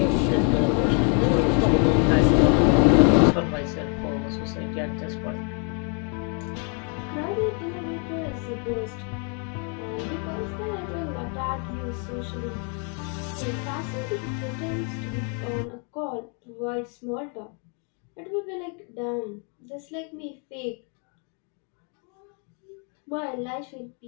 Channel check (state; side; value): quieter; right; 39.2 dB